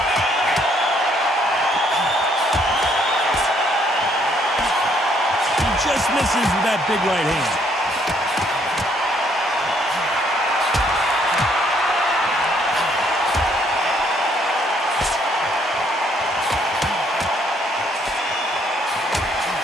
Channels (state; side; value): normal; both; correlation 0.67